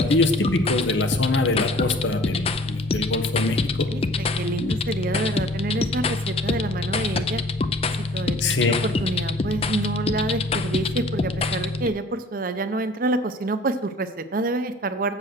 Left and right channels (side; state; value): both; normal; correlation 0.50